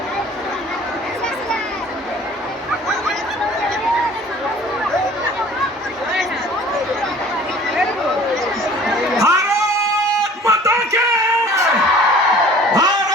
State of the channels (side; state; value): both; normal; correlation 0.48